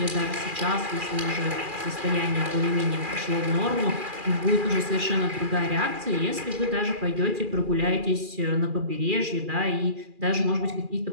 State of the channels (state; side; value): late; left; 2.4 ms